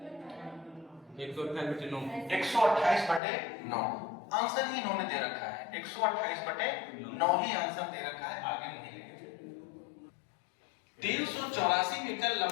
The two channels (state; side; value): drops out; right; at 3.2 s